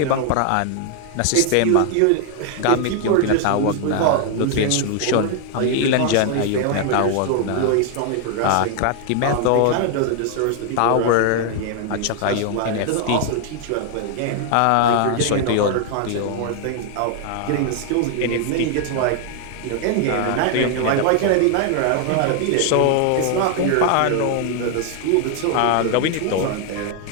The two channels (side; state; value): both; different; correlation 0.00